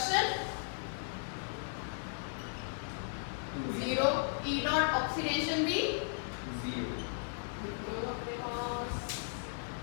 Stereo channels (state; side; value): silent; right; digital silence